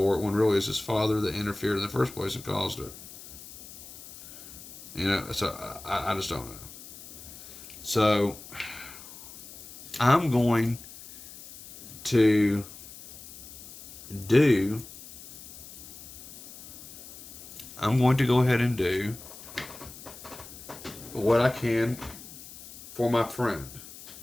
it, when really it's his father that interfered in the first place and caused it. So I just don't know. So I'm going to go ahead and do what I can for my friend.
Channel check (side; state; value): left; noise; hiss, 16 dB below the sound